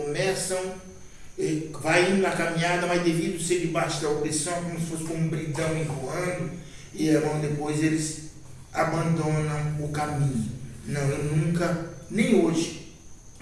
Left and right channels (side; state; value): both; identical; correlation 1.00